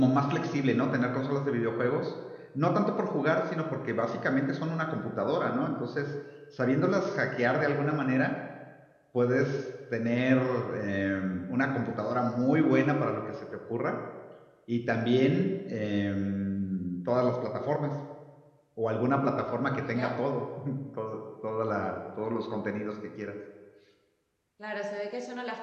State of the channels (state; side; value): identical; both; correlation 1.00